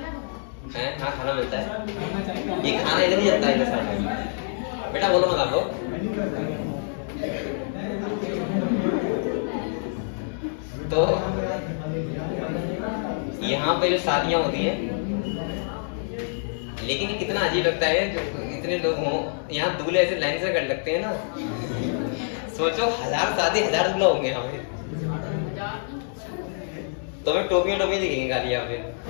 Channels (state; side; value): silent; right; digital silence